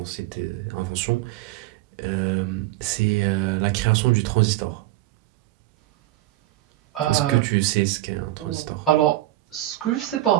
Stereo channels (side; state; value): left; quieter; 16.2 dB